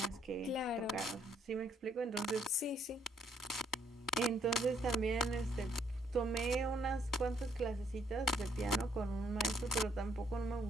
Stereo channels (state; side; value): normal; both; correlation 0.69